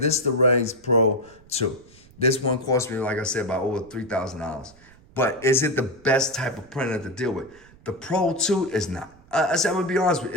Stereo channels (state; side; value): noise; right; rumble, 26 dB below the sound